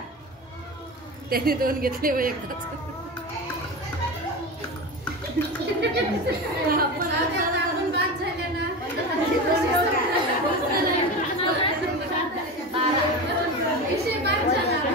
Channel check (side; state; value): both; normal; correlation 0.25